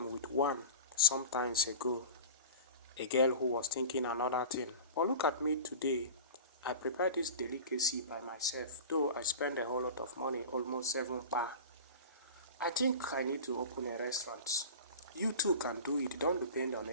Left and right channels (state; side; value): inverted; both; correlation -0.35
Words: with one sometimes ago. A girl who was thinking another thing. But look at me today. I prepared this delicacy by myself, though I spent a whole lot of money, almost 7 bar. I think I need to open a restaurant. You too can do it, don't depend on